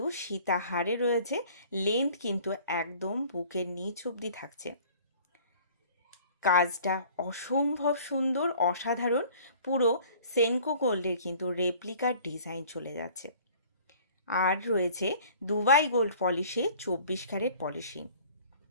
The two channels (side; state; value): both; inverted; correlation -0.51